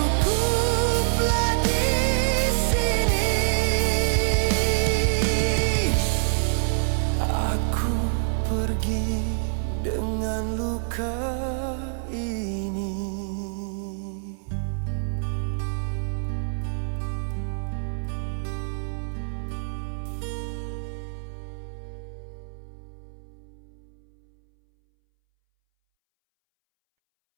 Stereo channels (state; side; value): silent; left; 61 dB below the other